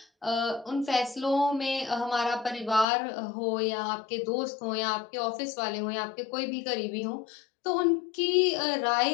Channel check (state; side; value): drops out; right; at 2.9 s